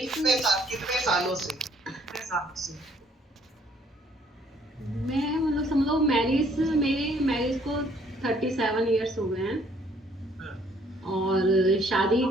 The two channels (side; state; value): both; normal; correlation 0.63